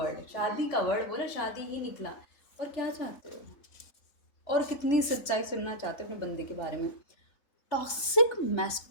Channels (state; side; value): late; right; 3.3 ms